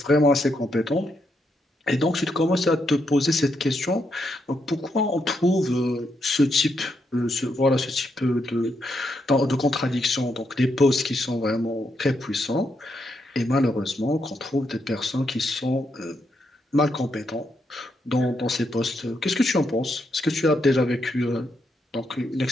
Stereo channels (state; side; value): normal; both; correlation 0.80